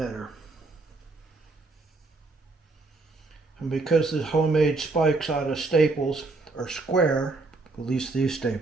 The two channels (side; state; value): left; quieter; 3.5 dB